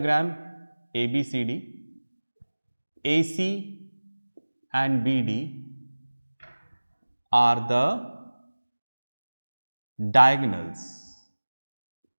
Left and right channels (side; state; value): both; inverted; correlation -1.00